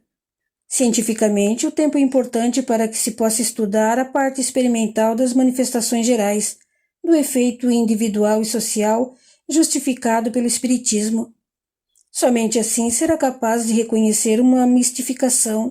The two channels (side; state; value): both; identical; correlation 1.00